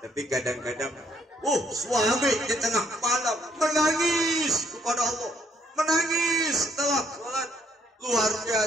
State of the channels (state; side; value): normal; both; correlation 0.68